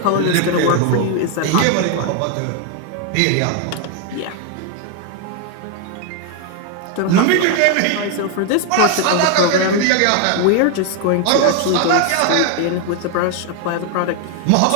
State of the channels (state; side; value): different; both; correlation 0.01